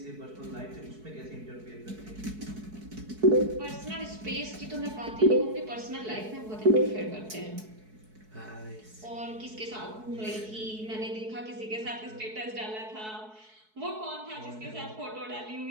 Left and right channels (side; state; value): left; late; 4.6 ms